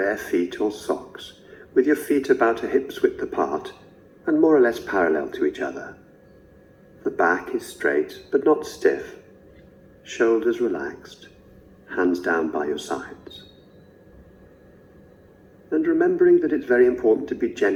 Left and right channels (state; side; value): identical; both; correlation 1.00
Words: feet or socks, with your feet about a hip's width apart and more or less parallel to each other. The back is straight but not stiff, shoulders relaxed, hands down by your sides. And remembering that it's very important to be